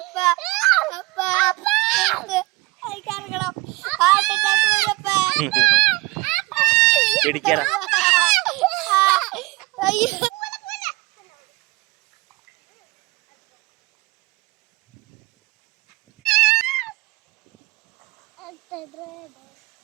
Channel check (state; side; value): quieter; left; 22.0 dB